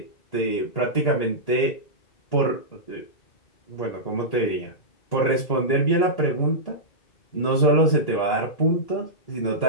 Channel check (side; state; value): right; late; 1.9 ms